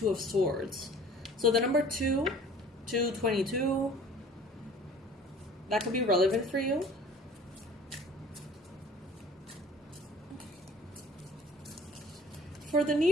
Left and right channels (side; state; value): both; normal; correlation 0.49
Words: of Swords. So the number 2, 222, that could be relevant for you. For the